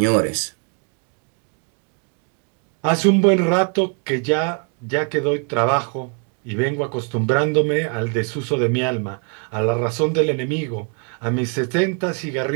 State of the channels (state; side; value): quieter; left; 38.1 dB